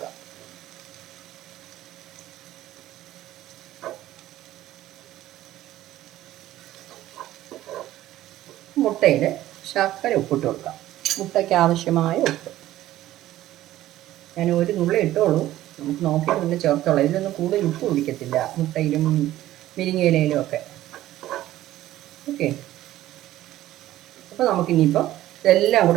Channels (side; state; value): left; quieter; 14.5 dB